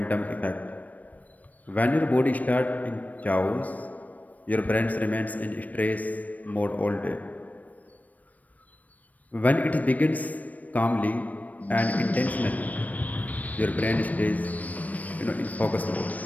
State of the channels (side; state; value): right; late; 0.074 ms